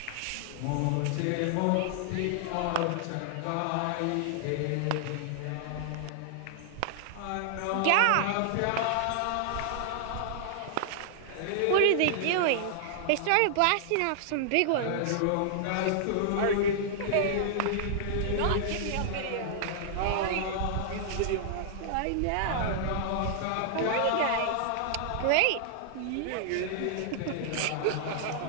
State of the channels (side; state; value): both; different; correlation -0.01